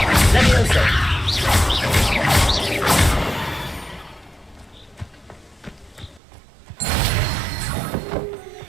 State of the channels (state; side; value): drops out; left; at 6.2 s